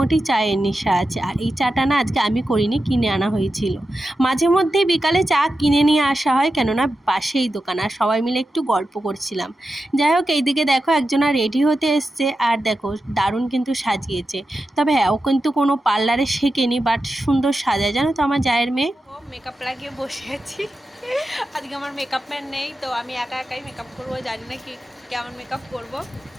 চায়ের নেশা আছে। আর এই চাটা না আজকে আমি করিনি, কিনে আনা হয়েছিল। মাঝে মধ্যেই বিকালে চা কিনে নিয়ে আসা হয়, কেননা পাশেই দোকান, আর সবাই মিলে একটু গল্প করছিলাম। যাই হোক, এইদিকে দেখো একজনা রেডি হতে এসছে, আর দেখো দারুণ কিন্তু সাজিয়েছে। তবে হ্যাঁ, ও কিন্তু কোনো পার্লারে শেখেনি, বাট সুন্দর সাজায়, জানো তো আমার জায়ের মেয়ে। মেকআপ লাগিয়ে বসে আছি। আজকে আমার মেকআপ ম্যান নেই, তো আমি একা একাই মেকআপ করবো। জানি না কি কেমন মেকআপ করব।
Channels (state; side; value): normal; both; correlation 0.91